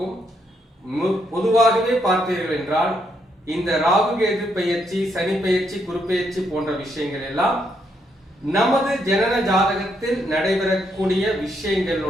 பொதுவாகவே பார்த்தீர்கள் என்றால், இந்த ராகு கேது பெயர்ச்சி, சனி பெயர்ச்சி, குரு பெயர்ச்சி போன்ற விஷயங்கள் எல்லாம் நமது ஜனன ஜாதகத்தில் நடைபெறக்கூடிய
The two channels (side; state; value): both; normal; correlation 0.76